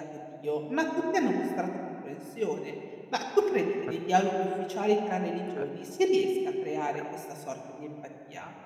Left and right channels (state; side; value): identical; both; correlation 1.00